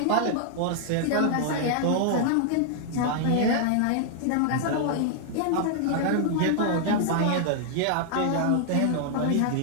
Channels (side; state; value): both; different; correlation -0.01